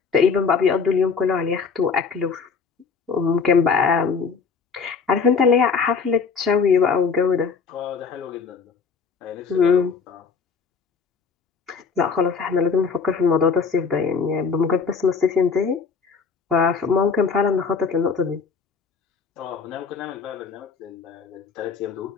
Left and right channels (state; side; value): quieter; right; 5.6 dB